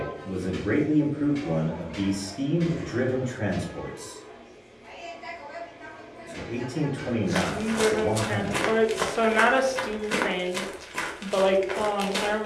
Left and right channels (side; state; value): both; identical; correlation 1.00